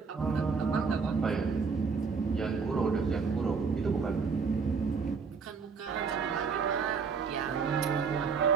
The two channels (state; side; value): quieter; left; 5.4 dB